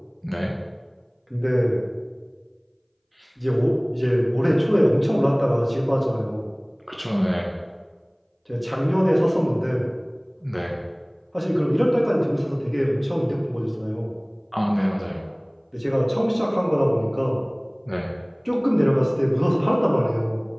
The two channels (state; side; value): identical; both; correlation 1.00